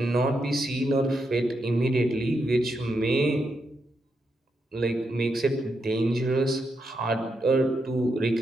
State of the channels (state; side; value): normal; both; correlation 0.82